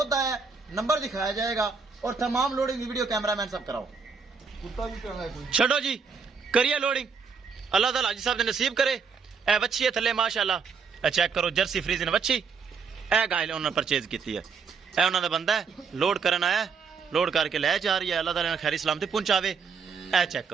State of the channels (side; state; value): left; quieter; 5.6 dB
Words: आया, नंबर दिखाया जाएगा और तमाम लोडिंग की वीडियो कैमरामैन सब कराओ। छो जी करिए लोडिंग, अल्लाह ताला हाजी साहब ने नसीब करे। ए बच्ची है थले माशाल्लाह, ए चेक करो जर्सी फ्रीजन बच्ची। ए गाय उन्होंने परचेज की है, ए उन्होंने बंदा है लोड करन आया, लोड करके लै जा रही है। अल्लाह ताला ने खैरी सलामती पहुंचावे। ए चेक